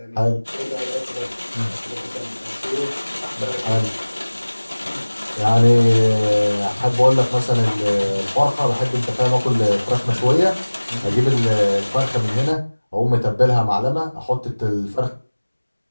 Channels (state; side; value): inverted; both; correlation -1.00